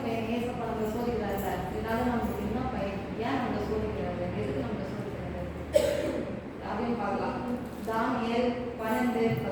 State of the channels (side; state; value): both; identical; correlation 1.00